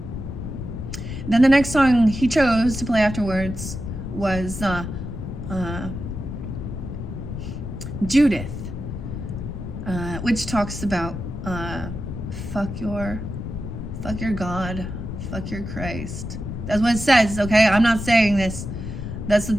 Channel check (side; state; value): left; noise; rumble, 7 dB below the sound